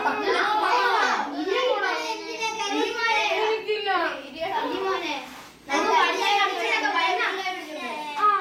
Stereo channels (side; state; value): both; identical; correlation 1.00